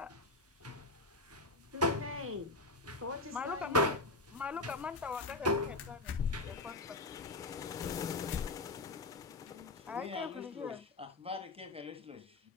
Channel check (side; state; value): right; quieter; 3.1 dB